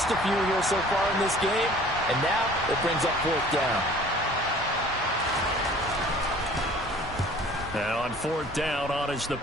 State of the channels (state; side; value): normal; both; correlation 0.50